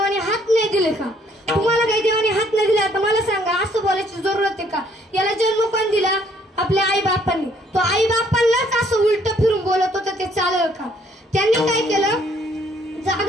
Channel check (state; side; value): normal; both; correlation 0.64